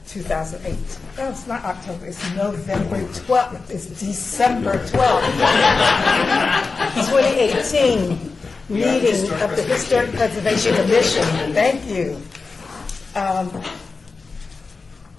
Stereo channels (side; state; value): right; quieter; 4.3 dB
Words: 2008. No, it's not October, it's November 12th, it's December 12th. 2018 meeting of the Historic Preservation Commission. Thank you.